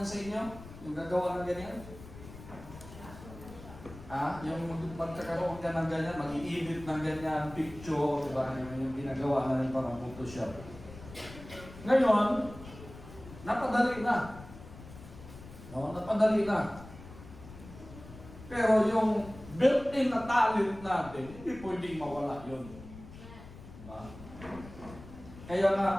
sa inyo? Yung gagawa ng ganyan? Yung magkakaroon ka ng ganyan, mag-i-edit ng ganyan, picture, diba? Yung ginagawa na rin parang Photoshop. Ngayon, napadali na. No, napadali na. Pero yung built-in na talent natin, hindi pwedeng mawala yun. Diba? Kaya nga,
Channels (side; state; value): left; noise; rumble, 16 dB below the sound